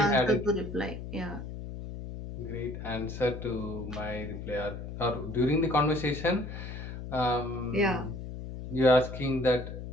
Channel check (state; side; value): noise; left; hum, 9 dB below the sound